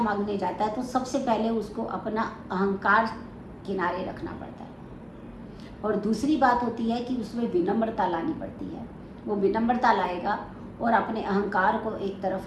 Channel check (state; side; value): identical; both; correlation 1.00